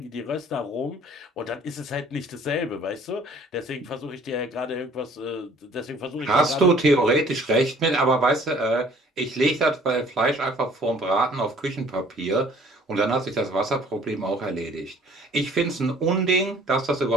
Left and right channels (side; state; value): both; normal; correlation 0.55